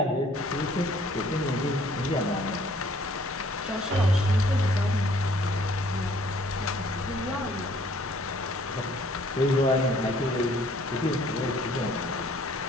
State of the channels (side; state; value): both; normal; correlation 0.59